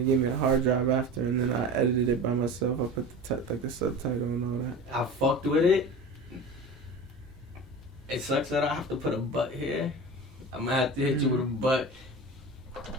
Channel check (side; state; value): both; normal; correlation 0.33